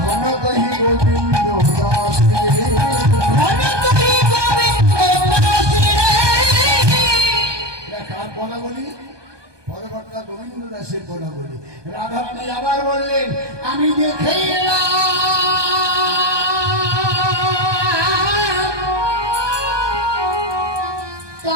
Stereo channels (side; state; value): left; late; 1.2 ms